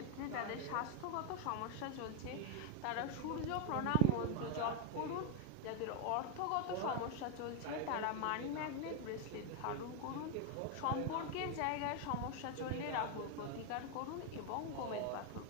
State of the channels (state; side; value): different; both; correlation 0.01